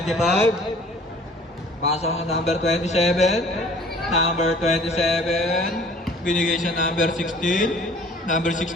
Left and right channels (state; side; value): normal; both; correlation 0.51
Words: pasok na number 27. Number 27, binigay sa number 16. Number